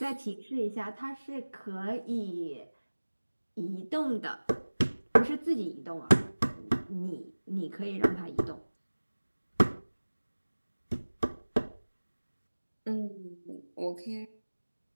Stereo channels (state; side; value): inverted; both; correlation -1.00